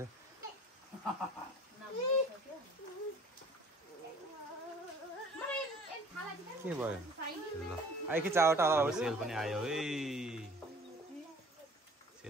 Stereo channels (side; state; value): both; normal; correlation 0.50